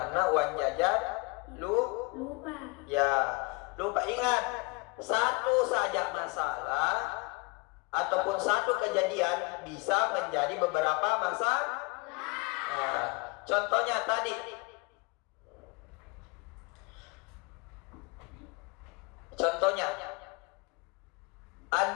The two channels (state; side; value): quieter; right; 27.6 dB